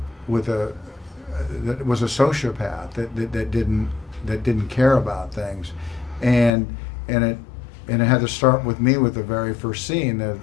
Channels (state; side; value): drops out; right; at 6.5 s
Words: that was a sociopath that didn't care about things, and and it and it had to start with me with the very first scene of